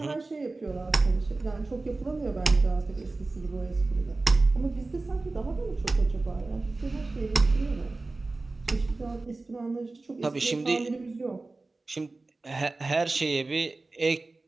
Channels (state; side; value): quieter; left; 3.4 dB